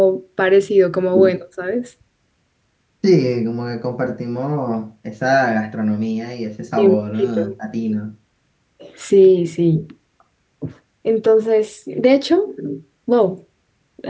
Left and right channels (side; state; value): both; identical; correlation 1.00